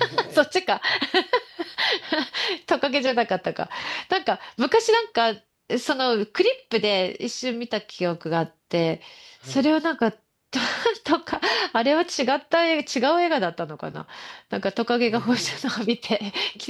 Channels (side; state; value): both; identical; correlation 1.00